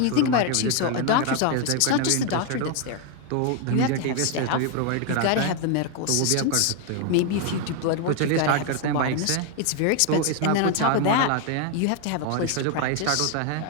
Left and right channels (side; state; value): both; different; correlation 0.01